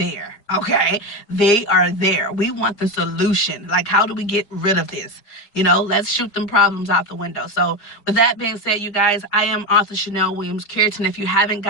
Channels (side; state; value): right; late; 5.0 ms